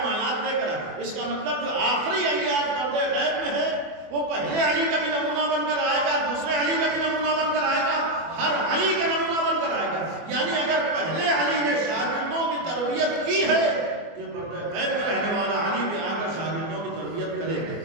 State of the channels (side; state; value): left; late; 24 ms